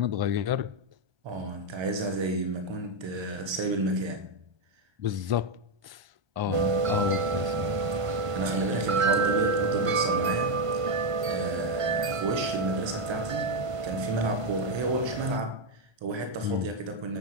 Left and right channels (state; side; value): late; left; 1.3 ms